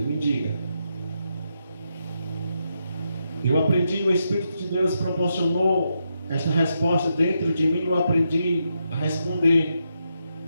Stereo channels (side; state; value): both; inverted; correlation -0.82